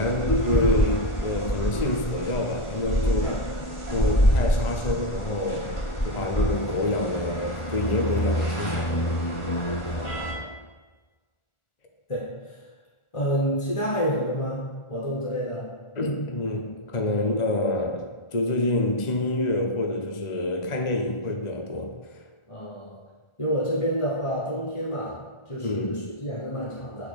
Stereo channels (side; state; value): right; late; 1.4 ms